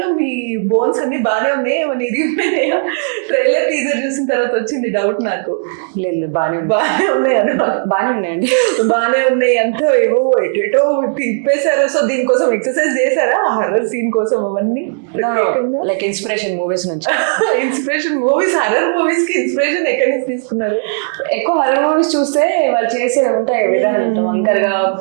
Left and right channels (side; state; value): left; silent; 65 dB below the other